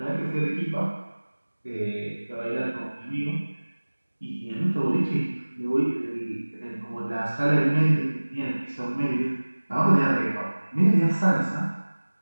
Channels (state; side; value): inverted; both; correlation -1.00